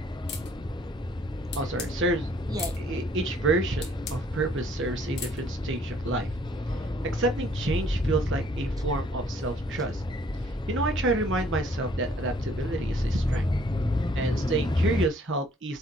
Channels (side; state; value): both; normal; correlation 0.61